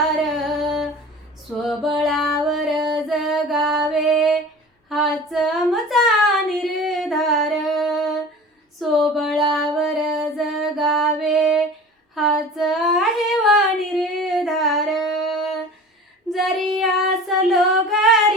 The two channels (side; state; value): both; normal; correlation 0.39